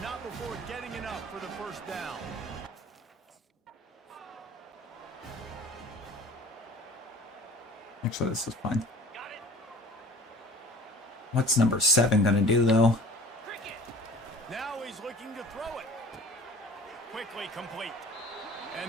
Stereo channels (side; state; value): both; normal; correlation 0.44